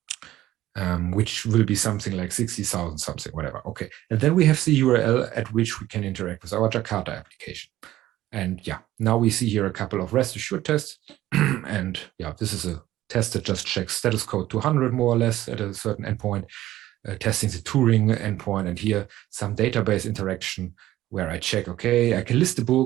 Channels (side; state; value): left; quieter; 14.7 dB